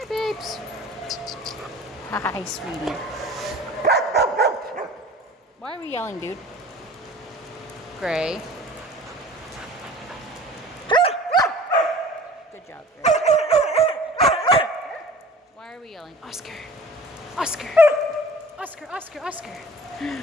babes. Hi, sweetie. Why are we yelling, dude? Gray. Good job, Gray. Why are we yelling? Oscar.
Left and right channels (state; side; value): normal; both; correlation 0.44